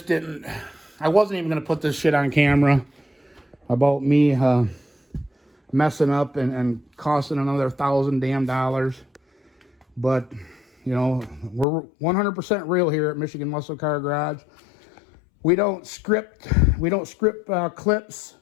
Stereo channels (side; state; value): right; drops out; at 11.7 s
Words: wasn't even going to put this shit on camera about me messing up and costing another $1,000 damn. But, you know, we're 100% real here at Michigan Muscle Car Garage. We don't script clips